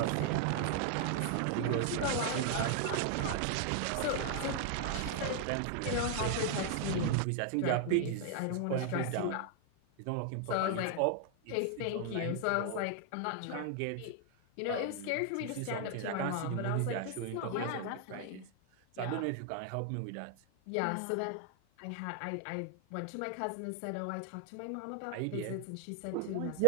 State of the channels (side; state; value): both; different; correlation 0.00